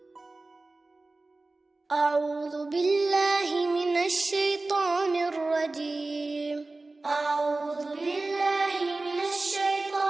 أعوذ بالله من الشيطان الرجيم. أعوذ بالله من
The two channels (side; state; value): left; quieter; 3.2 dB